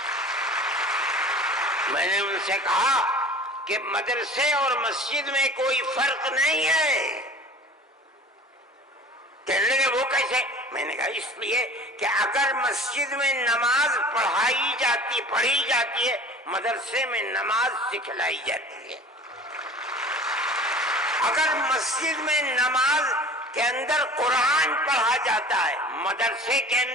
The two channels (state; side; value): normal; both; correlation 0.43